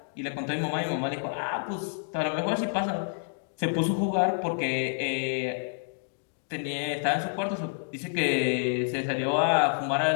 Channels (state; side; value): silent; right; digital silence